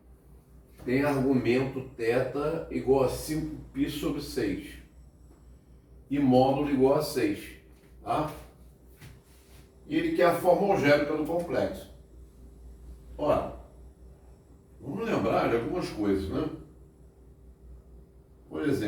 tem argumento θ igual a 5π sobre 6 e módulo igual a 6. Tá? E ele quer a forma algébrica do complexo. Ora, vamos lembrar de algumas coisas, né? Por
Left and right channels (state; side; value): identical; both; correlation 1.00